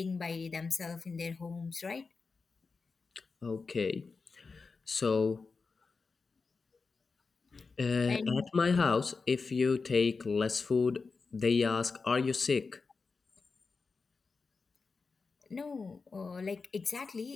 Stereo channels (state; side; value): quieter; right; 4.5 dB